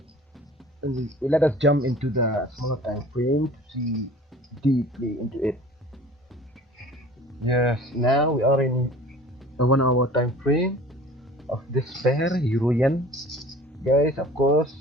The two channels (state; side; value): normal; both; correlation 0.45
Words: let us jump into the smaller time frame to see deeply into it. Yes, now we are in a 1 hour time frame of this pair, Euro Yen. Guys, of